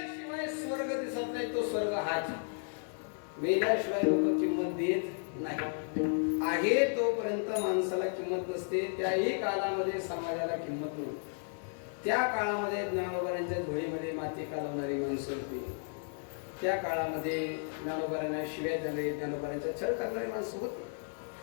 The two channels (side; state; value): right; silent; 55 dB below the other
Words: स्वर्ग दिसत नाही. तो स्वर्ग हाच. मेल्याशिवाय लोक किंमत देत नाही. आहे तोपर्यंत माणसाला किंमत नसते. त्याही काळामध्ये समाजाला किंमत नव्हती. त्या काळामध्ये ज्ञानोबारांच्या धुळीमध्ये माती कालवणारी माणसं होती. त्या काळामध्ये ज्ञानोबारांना शिव्या देणारी, ज्ञानोबारांचा छळ करणारी माणसं होती.